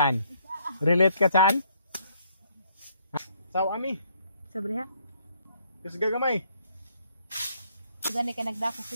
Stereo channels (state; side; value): inverted; both; correlation -0.68